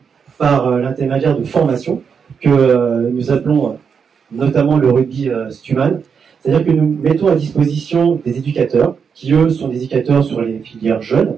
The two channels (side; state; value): left; quieter; 6.4 dB